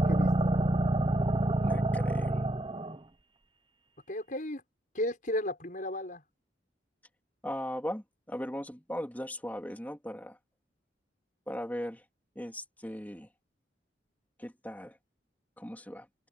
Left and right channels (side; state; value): both; normal; correlation 0.77